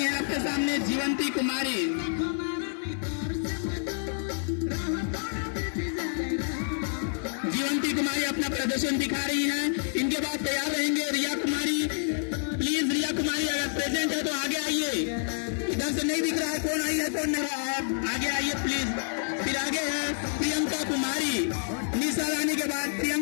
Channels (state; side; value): silent; right; digital silence